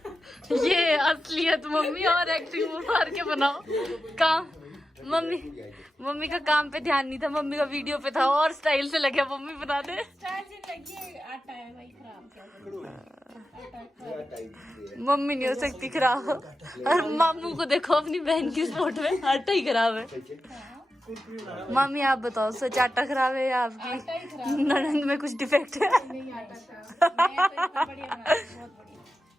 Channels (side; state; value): both; normal; correlation 0.91